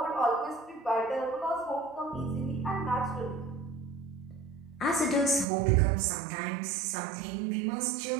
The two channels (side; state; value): left; drops out; at 5.5 s